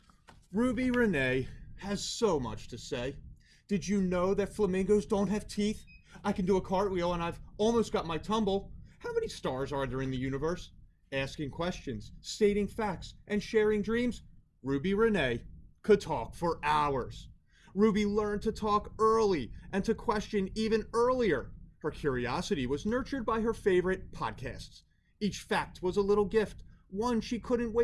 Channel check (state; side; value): identical; both; correlation 1.00